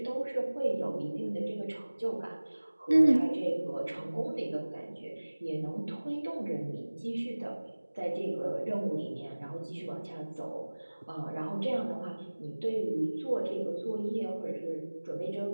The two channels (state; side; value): inverted; both; correlation -1.00